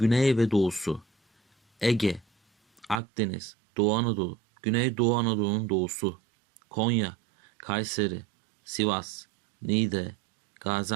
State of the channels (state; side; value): drops out; left; at 3.0 s